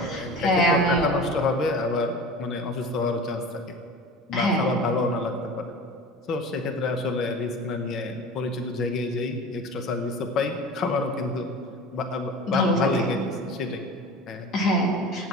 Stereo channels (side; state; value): both; normal; correlation 0.36